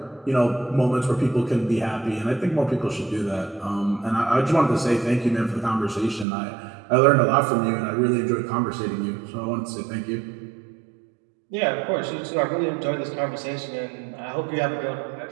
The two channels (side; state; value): left; drops out; at 6.2 s